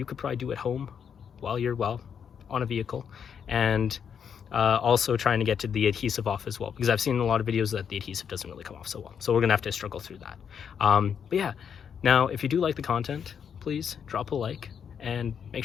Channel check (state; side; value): quieter; right; 7.5 dB